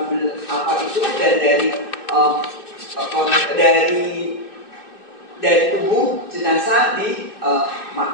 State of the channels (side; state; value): right; late; 2.6 ms